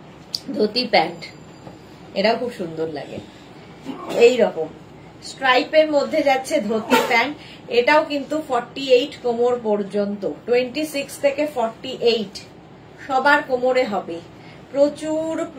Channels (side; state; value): both; identical; correlation 1.00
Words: ধুতি প্যান্ট, এটাও খুব সুন্দর লাগে। এই রকম স্ট্রাইপের মধ্যে যাচ্ছে ধুতি প্যান্ট, এটাও কিন্তু 48 কোমর পর্যন্ত। 26 থেকে 48 সবার কোমরে হবে, প্রচুর